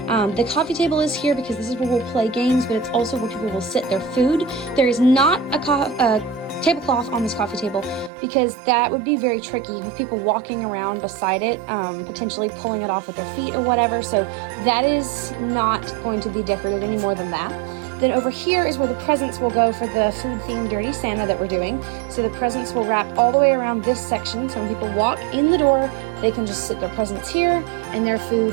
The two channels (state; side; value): drops out; left; at 8.1 s